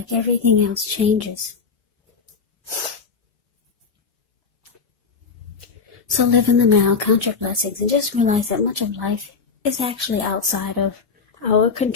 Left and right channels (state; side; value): quieter; right; 5.2 dB